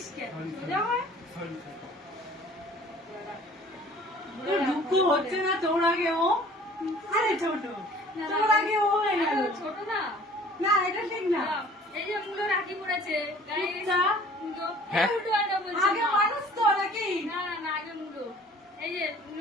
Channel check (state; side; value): normal; both; correlation 0.50